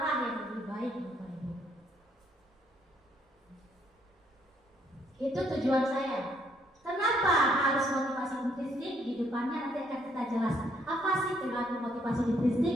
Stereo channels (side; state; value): both; normal; correlation 0.69